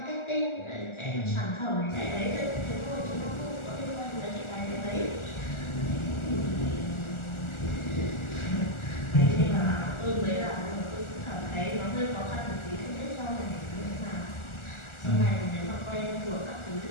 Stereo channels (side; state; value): right; late; 1.4 ms